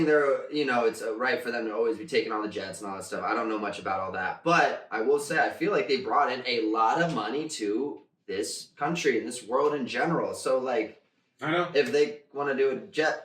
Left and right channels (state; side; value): identical; both; correlation 1.00